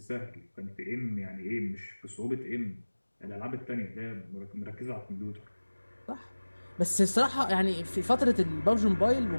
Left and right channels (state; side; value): inverted; both; correlation -1.00